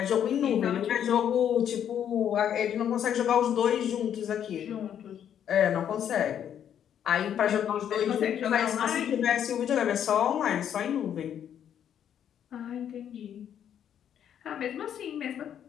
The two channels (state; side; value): quieter; right; 9.4 dB